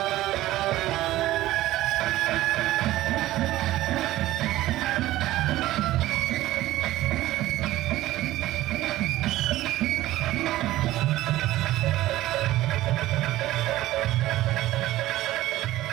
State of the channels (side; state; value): left; quieter; 15.9 dB